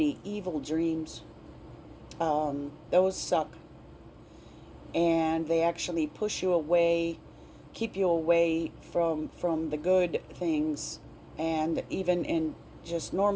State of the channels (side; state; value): both; identical; correlation 1.00